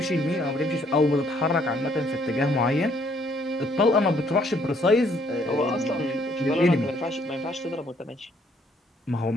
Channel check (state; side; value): normal; both; correlation 0.66